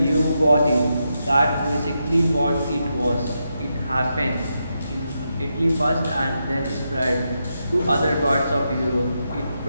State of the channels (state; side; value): inverted; both; correlation -0.85